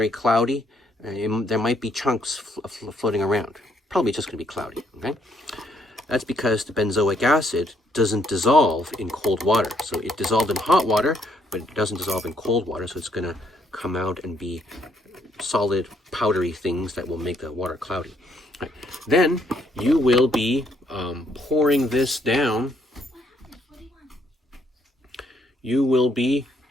cloudy. There might be chunks floating around. Probably just going to be cloudy, okay? That's because the benzoic acid doesn't dissolve in cold water. So it dissolved in hot water, but it doesn't dissolve in cold water. So it's going to come out and be solid, powdery things that will make the water cloudy. Right. Then you will be pouring this down. You will be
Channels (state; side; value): normal; both; correlation 0.71